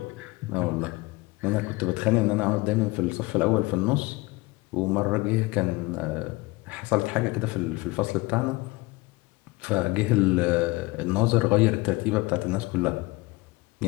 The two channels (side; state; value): right; quieter; 22.8 dB